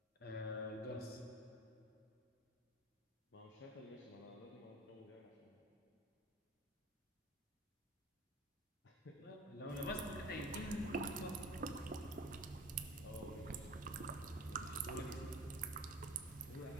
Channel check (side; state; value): both; normal; correlation 0.41